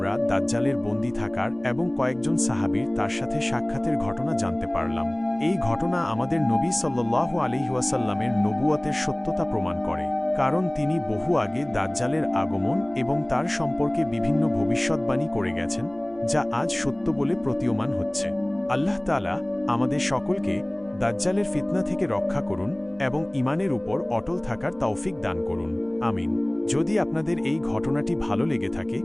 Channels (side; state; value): right; noise; hum, 26 dB below the sound